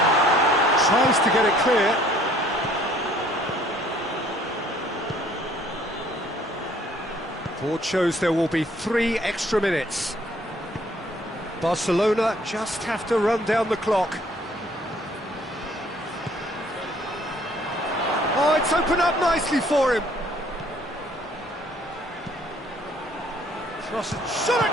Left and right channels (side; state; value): both; normal; correlation 0.60